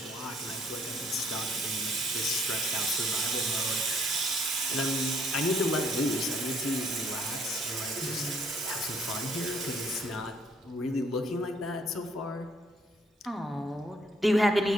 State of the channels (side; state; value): both; normal; correlation 0.65